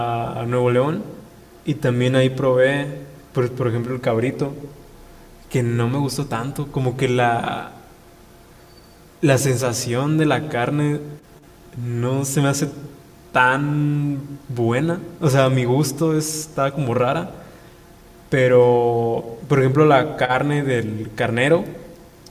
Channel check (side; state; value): both; identical; correlation 1.00